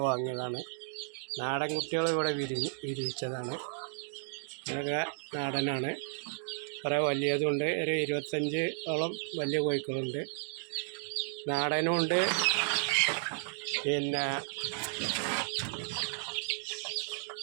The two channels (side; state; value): left; silent; digital silence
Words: വാങ്ങിയതാണ്. നാടൻ കുട്ടികൾ ഇവിടെ വിരിയിച്ചതാണ്. ഇതൊക്കെ നാടനാണ്. കുറേ വലിയതുണ്ട്. ഒരു 25ഓളം വലിയ കോഴിക്കളുണ്ട്. നാടനുണ്ട്. പിന്നെ